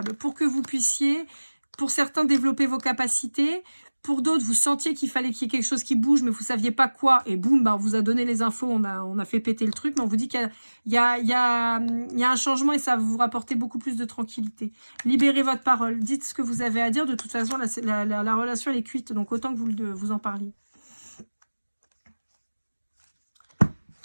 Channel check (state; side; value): inverted; both; correlation -1.00